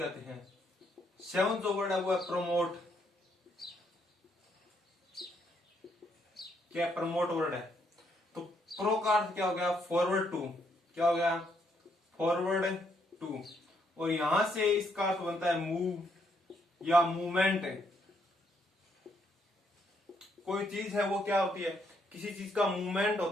हैं। सेवंथ जो वर्ड है वो है प्रमोट। क्या प्रमोट वर्ड है। तो प्रो का अर्थ क्या हो गया, फॉरवर्ड टू। क्या हो गया, फॉरवर्ड टू, और यहां से इसका अर्थ बनता है मूव या मूवमेंट। कोई चीज है वो क्या होती है, किसी चीज का मूवमेंट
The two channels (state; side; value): normal; both; correlation 0.73